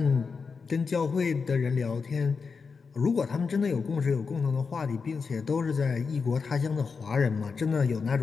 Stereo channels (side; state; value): right; quieter; 5.1 dB